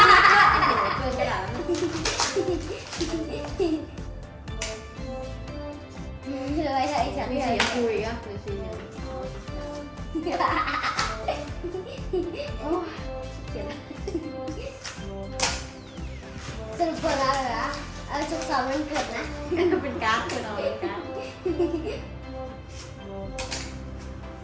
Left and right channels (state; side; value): identical; both; correlation 1.00